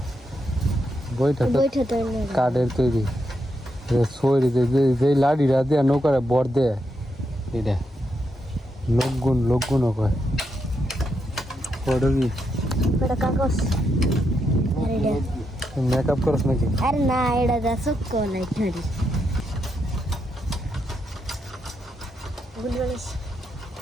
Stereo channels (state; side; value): normal; both; correlation 0.82